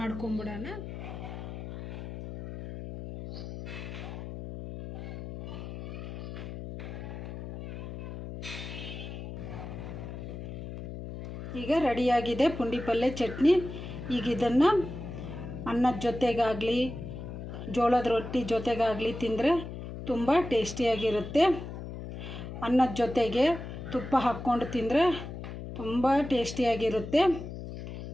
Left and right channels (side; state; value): left; noise; hum, 9 dB below the sound